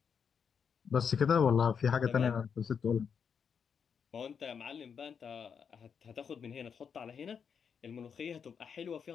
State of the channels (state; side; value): quieter; right; 6.8 dB